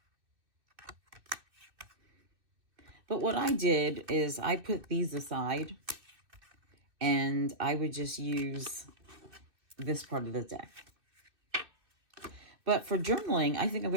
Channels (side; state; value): left; late; 2.6 ms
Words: But what I did is I put these aside, and I would just use this part of the deck. But for journaling, I think I'm